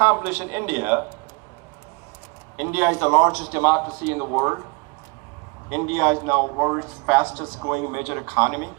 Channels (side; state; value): left; quieter; 29.6 dB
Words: in India. India is the largest democracy in the world. India is now the world's fastest growing major economy.